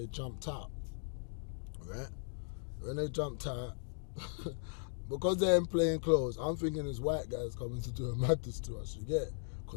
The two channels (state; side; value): silent; right; digital silence